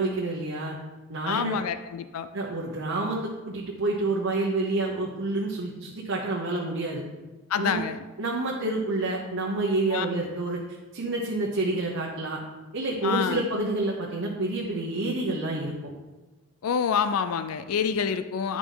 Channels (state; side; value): normal; both; correlation 0.16